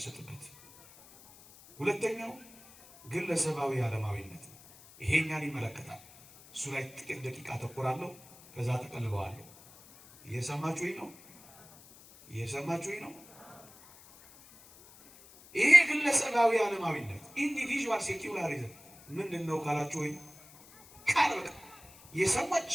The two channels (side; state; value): left; noise; hiss, 22 dB below the sound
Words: ሁለተኛው ግለሰባዊ ዓለማዊነት ነው። ይሄኛን ይመለከታል። እሱ ላይ ጥቂት ደቂቃ አተኩራለሁ፣ ከዛ ተቀልበዋለሁ። እየሰማችሁኝ ነው? እየሰማችሁኝ ነው? ይሄ ግለሰባዊ ዓለማዊነት ኢንዲቪዥዋል ሴኩላሪዝም ምንድን ነው ካላችሁ ወይ ቃል በቃ የሰዎች